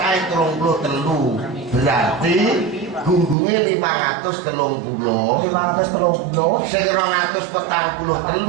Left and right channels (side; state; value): left; drops out; at 3.4 s